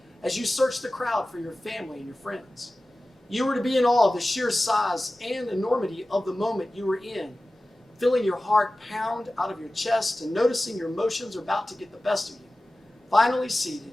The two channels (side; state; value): both; normal; correlation 0.96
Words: as you searched the crowd for your family and your friends. You were to be in awe of the sheer size and enormity of the moment you were in, feeling your heart pound out of your chest and noticing your emotions are about to get the best of you. Finally